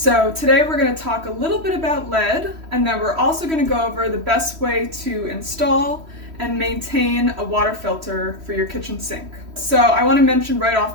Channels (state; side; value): late; left; 3.1 ms